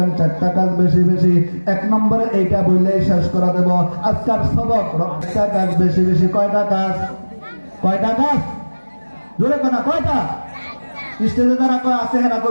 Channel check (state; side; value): inverted; both; correlation -1.00